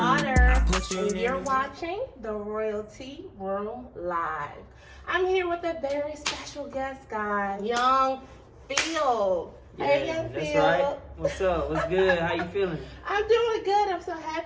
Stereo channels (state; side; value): identical; both; correlation 1.00